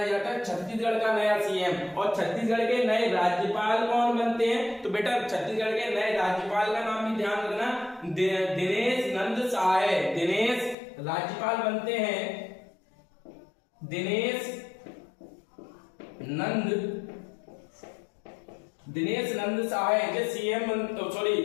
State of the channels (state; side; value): drops out; right; at 10.8 s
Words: जाता है? छत्तीसगढ़ का नया सीएम। और छत्तीसगढ़ के नए राज्यपाल कौन बनते हैं, तो बेटा छत्तीसगढ़ के नए राज्यपाल का नाम भी ध्यान रखना, दिनेश नंद सहाय, दिनेश राज्यपाल बनते हैं, दिनेश नंद सहाय जो सीएम, सॉरी